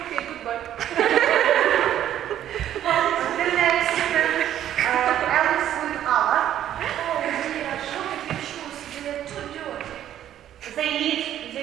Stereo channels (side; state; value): left; quieter; 11.3 dB